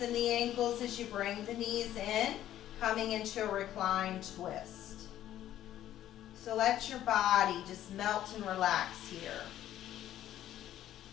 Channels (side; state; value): right; quieter; 12.3 dB